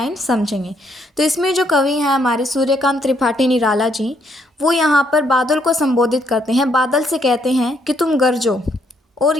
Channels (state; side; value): normal; both; correlation 0.71